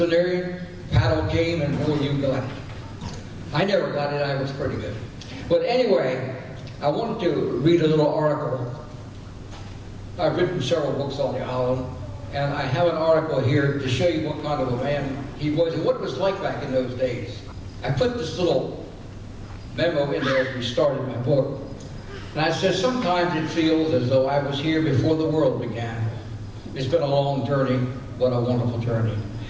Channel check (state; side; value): identical; both; correlation 1.00